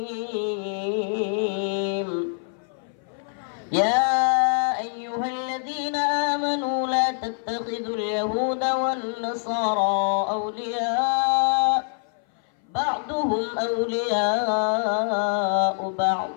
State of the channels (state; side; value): silent; right; 59 dB below the other